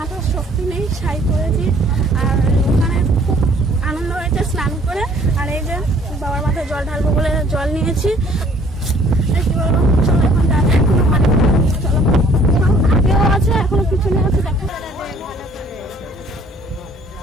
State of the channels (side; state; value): both; normal; correlation 0.58